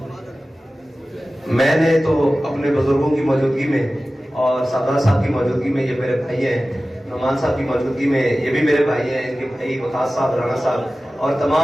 میں نے تو اپنے بزرگوں کی موجودگی میں اور سردار صاحب کی موجودگی میں، یہ میرے بھائی ہیں، نعمان صاحب کی موجودگی میں یہ بھی میرے بھائی ہیں، ان کے بھائی وقاص صاحب، رانا صاحب اور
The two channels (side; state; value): both; normal; correlation 0.96